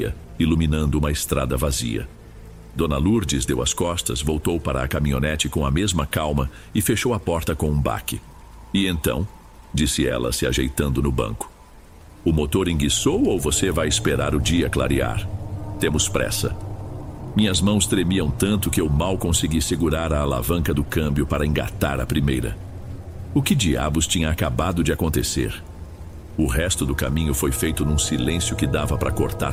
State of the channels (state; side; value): identical; both; correlation 1.00